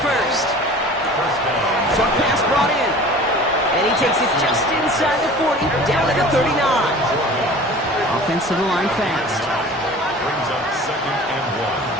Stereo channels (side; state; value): both; normal; correlation 0.42